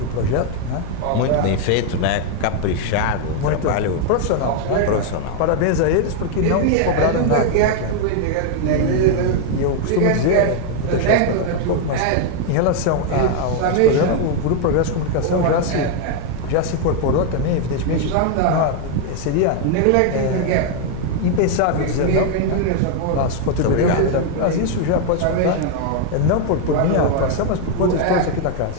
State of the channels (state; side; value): different; both; correlation 0.00